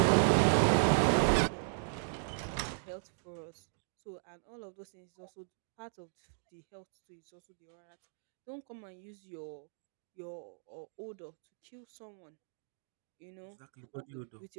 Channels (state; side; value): silent; left; digital silence